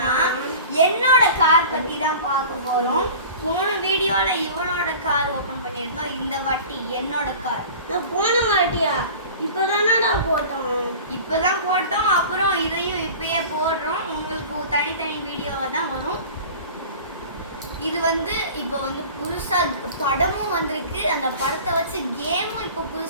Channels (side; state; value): both; inverted; correlation -0.39